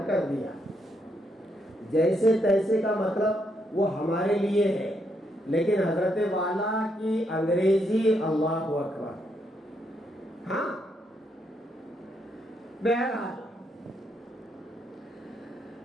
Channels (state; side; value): normal; both; correlation 0.77